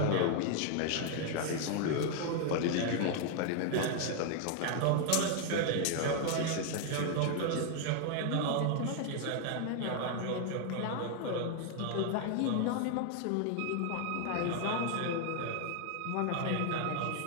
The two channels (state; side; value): different; both; correlation 0.00